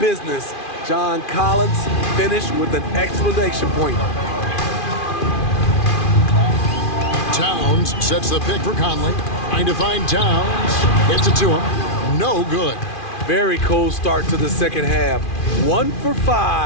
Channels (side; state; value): right; late; 2.4 ms